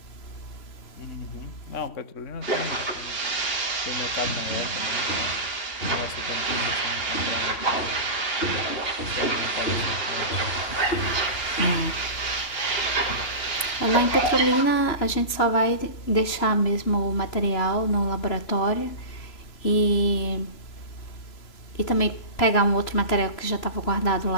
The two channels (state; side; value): late; right; 3.0 ms